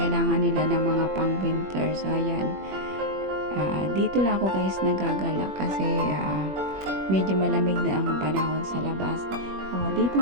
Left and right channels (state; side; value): late; left; 21 ms